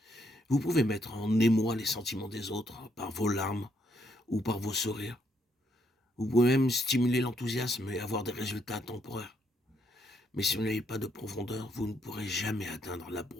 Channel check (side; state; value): both; normal; correlation 0.74